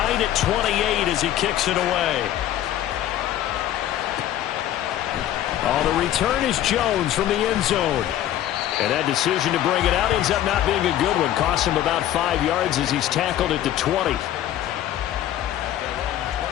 at 28 as he kicks it away. Oh, the return is Jones from the end zone. And that decision to bring it out ends up not being a good one. Costs him about 5 yards as he's tackled at the 20.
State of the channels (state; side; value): quieter; right; 12.3 dB